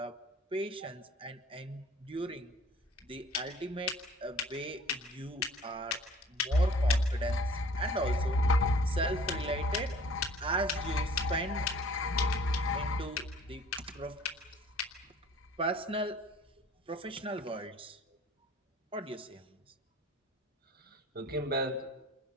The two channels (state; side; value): normal; both; correlation 0.51